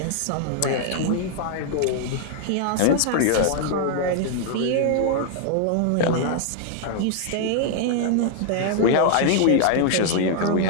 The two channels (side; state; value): both; different; correlation 0.00